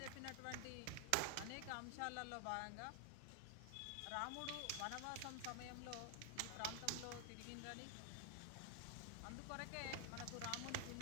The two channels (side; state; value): both; different; correlation 0.00